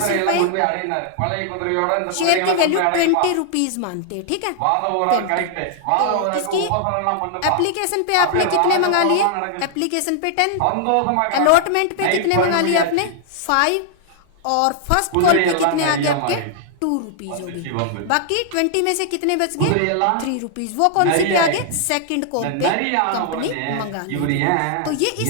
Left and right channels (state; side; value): different; both; correlation 0.00